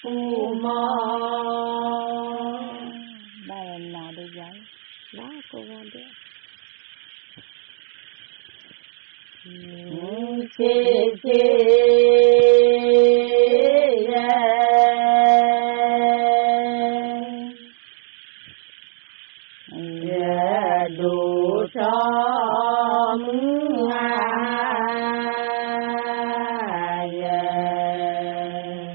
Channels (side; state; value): left; silent; digital silence